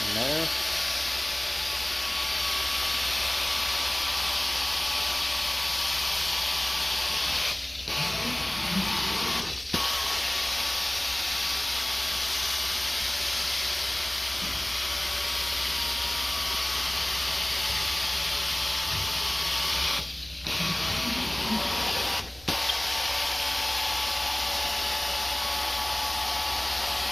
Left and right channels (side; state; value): right; noise; rumble, 24 dB below the sound